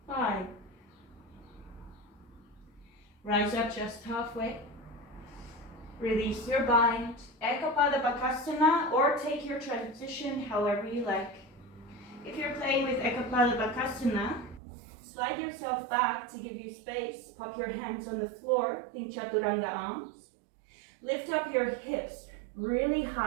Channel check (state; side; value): drops out; left; at 14.6 s